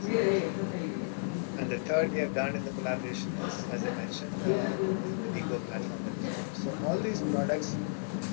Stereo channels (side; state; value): right; silent; 56 dB below the other